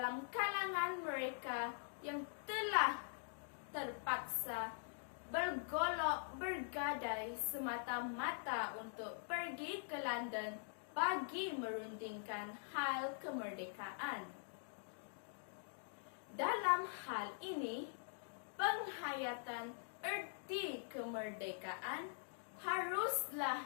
kalangan mereka yang telah terpaksa bergolok bergadai semata-mata untuk pergi ke London bagi merundingkan hal kemerdekaan. Dalam hal ini, penghayatan erti kemerdekaan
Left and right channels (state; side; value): silent; right; digital silence